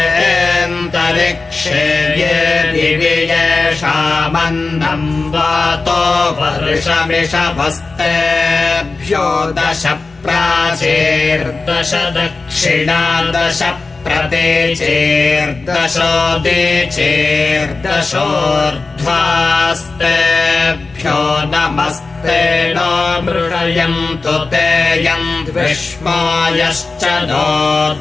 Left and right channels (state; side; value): quieter; right; 3.9 dB